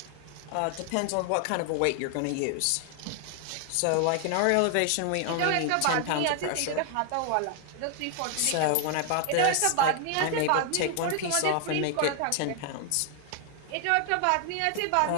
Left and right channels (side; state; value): both; different; correlation 0.00